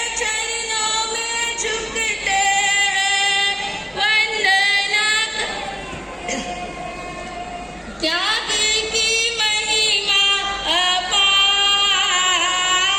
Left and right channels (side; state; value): both; identical; correlation 1.00